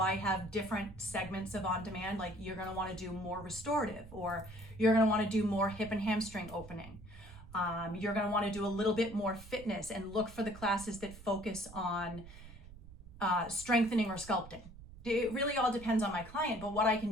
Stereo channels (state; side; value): noise; right; rumble, 17 dB below the sound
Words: I have different segments of on-demand, like you're going to want to do more restorative, or you're going to want to do more hip and hamstring opening. You're going to want to do a little bit more fitness and look for the classes that focus on strengthening or sculpting. It really all depends on my client, but what I